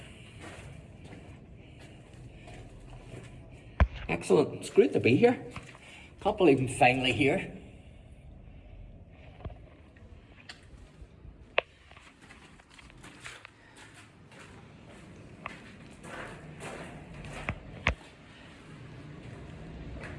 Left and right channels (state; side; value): identical; both; correlation 1.00